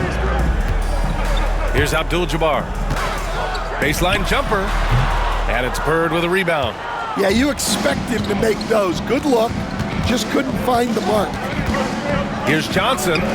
Here's Abdul-Jabbar. Baseline jumper. And it's Bird with a rebound. Yeah, you expect him to make those. Good look. Just couldn't find the mark. Here's Johnson.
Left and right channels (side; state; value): both; identical; correlation 1.00